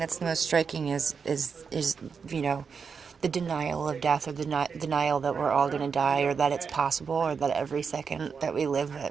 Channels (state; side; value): quieter; left; 5.9 dB